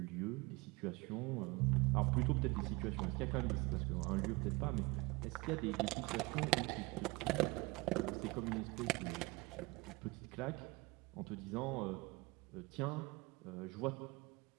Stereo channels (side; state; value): left; quieter; 24.3 dB